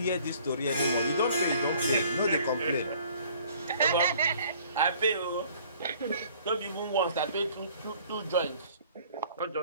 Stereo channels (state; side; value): inverted; both; correlation -0.55